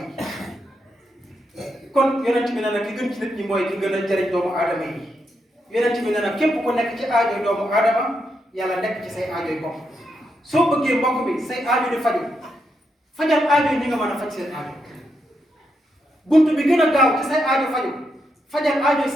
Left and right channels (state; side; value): normal; both; correlation 0.82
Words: kon yonent bi nee na ki gën ci nit ñi mooy ki gën a jëriñ doomu aadama yi yonent bi nee na képp ku nekk ci aajoy doomu aadama yàlla nekk ci say aajoy bopp soo bëggee mbokk bi say aajo di faju fajal aajo yi ñi nga mën a faj seen aajo buntu bi gën a gaaw ci say aajo faju fajal aajo